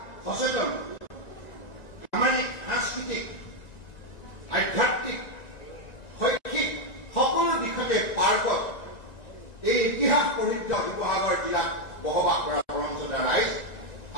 সচেতন, সামাজিক, সাংস্কৃতিক, আধ্যাত্মিক, শৈক্ষিক সকলো দিশতে পাৰ্গত এই ইতিহাস প্ৰসিদ্ধ শিৱসাগৰ জিলাত বসবাস কৰা পৰম শ্ৰদ্ধা ৰাইজ,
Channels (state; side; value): late; right; 1.9 ms